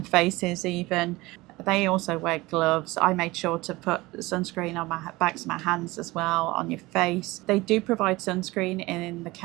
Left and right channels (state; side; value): quieter; left; 20.8 dB